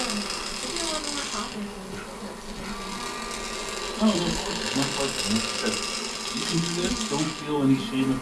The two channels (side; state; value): both; identical; correlation 1.00